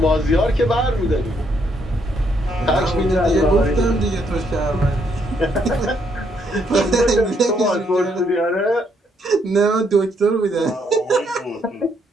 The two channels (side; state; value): both; normal; correlation 0.73